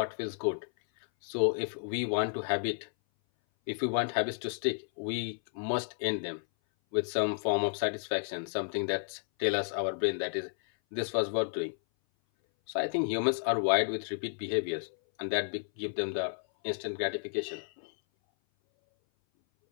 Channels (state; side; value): silent; right; 56 dB below the other